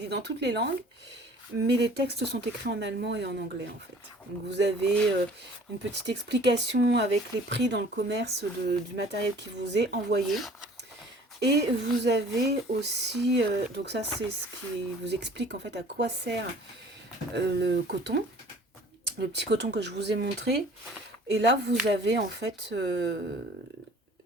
dans toutes les langues, mais les textes sont écrits en allemand et en anglais, en fait. Donc vous avez une petite explication avec les prix dans le commerce du matériel qui vous est envoyé. Et vous avez aussi, donc ça c'est ce qui vous explique en fait à quoi sert le coton, le petit coton que je vous ai montré. Et là vous avez en fait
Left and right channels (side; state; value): both; normal; correlation 0.50